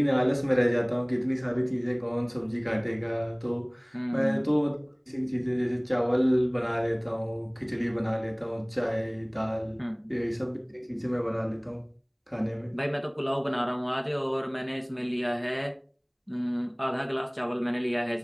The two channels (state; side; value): identical; both; correlation 1.00